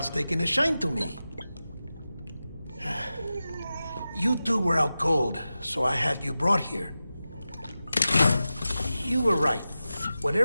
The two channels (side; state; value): both; inverted; correlation -0.94